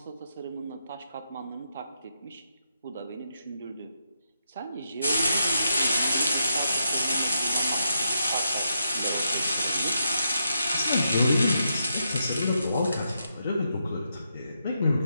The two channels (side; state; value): both; inverted; correlation -0.82